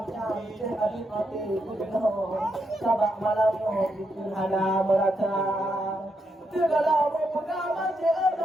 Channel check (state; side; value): normal; both; correlation 0.81